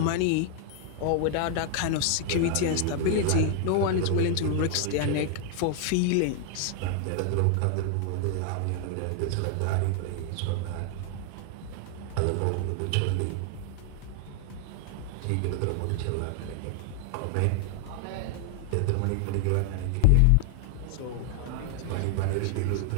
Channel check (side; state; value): both; different; correlation 0.00